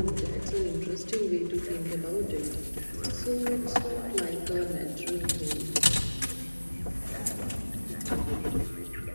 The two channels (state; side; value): inverted; both; correlation -1.00